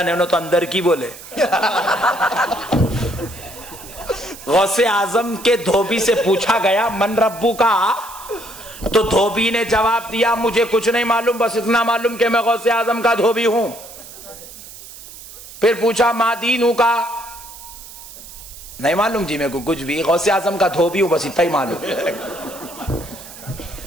ہے, انہوں تو اندر کی بولے. غوث اعظم کے دھوبی سے پوچھا گیا من ربو کا, تو دھوبی نے جواب دیا مجھے کچھ نہیں معلوم, بس اتنا معلوم کہ میں غوث اعظم کا دھوبی ہوں. پھر پوچھا ما دینو کا, نہیں معلوم جی میرے کو کچھ بھی, غوث اعظم کا دھوبی ہوں بس اتنا ہی معلوم.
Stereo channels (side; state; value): right; noise; hiss, 16 dB below the sound